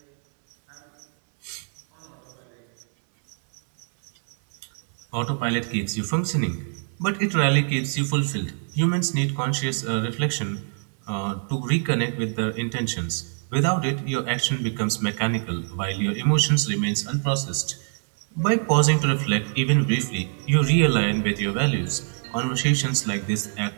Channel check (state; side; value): silent; left; 62 dB below the other